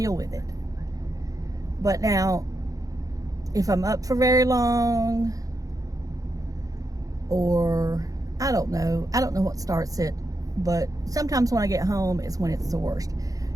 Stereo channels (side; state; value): left; late; 0.17 ms